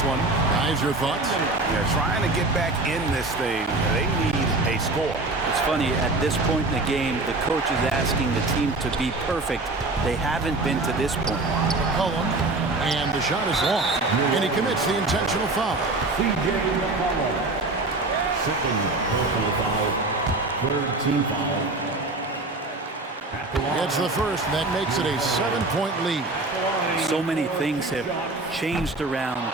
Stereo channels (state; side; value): quieter; left; 3.1 dB